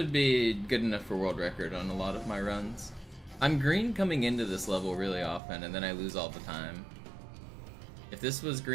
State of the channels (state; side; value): drops out; left; at 5.4 s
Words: be good enough for world record on a lot of my runs. I'm green coming into this level really often, and then I lose all the time. If this was